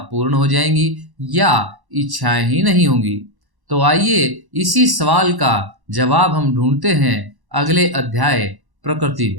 पूर्ण हो जाएंगी या इच्छाएं ही नहीं होंगी। तो आइए इसी सवाल का जवाब हम ढूंढते हैं अगले अध्याय प्रकृति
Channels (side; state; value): left; late; 1.1 ms